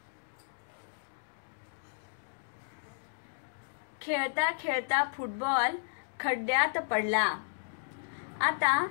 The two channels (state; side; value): silent; right; digital silence